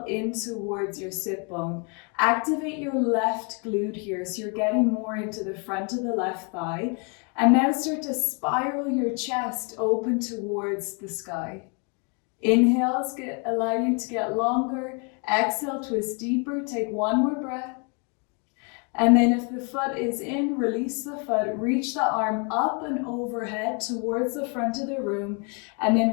in towards your sit bone. Activate your left glute here so you're getting more into the front of the left thigh. And now start to spiral your chest open towards the sky. Inhales allow you to get longer. Exhale, twist deeper. Take one more breath. And then if the foot is in, release the foot. Reach the arm up and overhead towards the front of the room. And then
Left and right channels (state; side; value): quieter; right; 36.0 dB